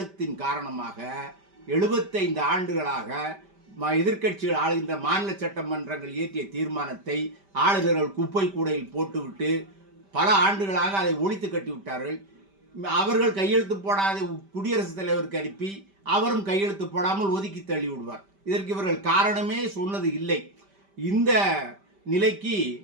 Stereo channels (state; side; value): late; left; 5.1 ms